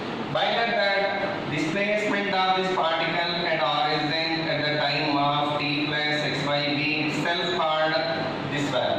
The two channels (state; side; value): identical; both; correlation 1.00